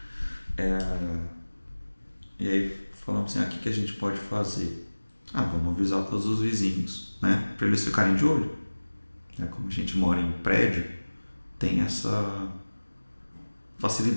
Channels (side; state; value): both; inverted; correlation -1.00